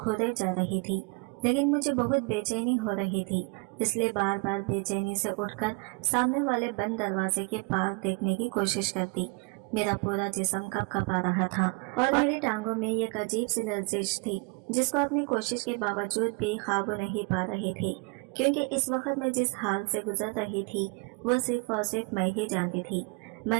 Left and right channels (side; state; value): left; quieter; 31.0 dB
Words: जा रही थी, लेकिन मुझे बहुत बेचैनी हो रही थी, इसलिए बार बार बेचैनी से उठकर सामने वाले बंद दरवाजे के पार देखने की कोशिश करती। मेरा पूरा जिस्म कँपा रहा था और मेरी टांगों में एक अजीब सी लर्जिश थी, जिसको अपनी कोशिश के बावजूद भी काबू नहीं पा रही थी, क्योंकि इस वक्त मैं जिस हाल से गुजर रही थी वो सिर्फ और सिर्फ मैं ही जानती थी।